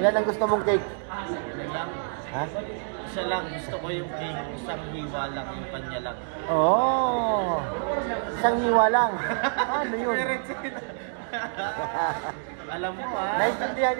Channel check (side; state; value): left; silent; digital silence